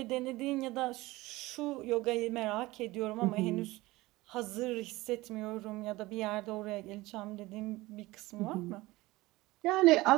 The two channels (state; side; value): quieter; left; 19.7 dB